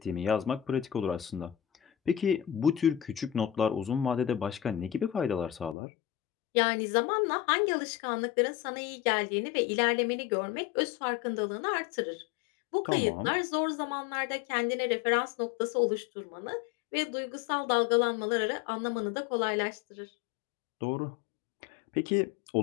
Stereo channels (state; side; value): drops out; right; at 5.8 s